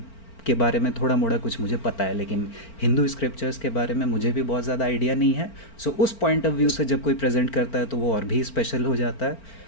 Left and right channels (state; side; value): late; right; 4.4 ms